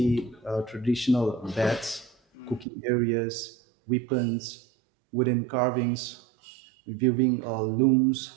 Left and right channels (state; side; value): drops out; left; at 2.7 s